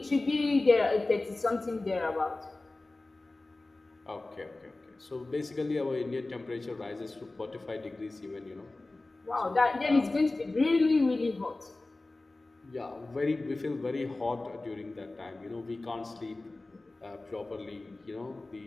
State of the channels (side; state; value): right; quieter; 3.0 dB